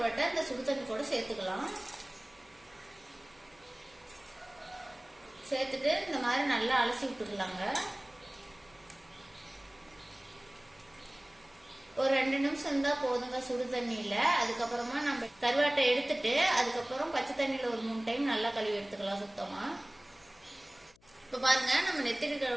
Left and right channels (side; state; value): left; noise; hum, 30 dB below the sound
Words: இந்த சுடு தண்ணி கூட சேர்த்துக்கலாம். சேர்த்துட்டு இந்த மாதிரி நல்லா அலசி விட்டுக்கலாங்க. ஒரு 2 நிமிஷம் இருந்தா போதுங்க சுடு தண்ணியில. அதுக்கப்புறமா நம்ம கருவாட்டை எடுத்துட்டு அதுக்கப்புறம் பச்சை தண்ணியில ஒரு 3 டைம் நல்லா கழுவி எடுத்துக்கலாம் சுத்தமா. இப்ப பாருங்க, நம்ம நெத்திலி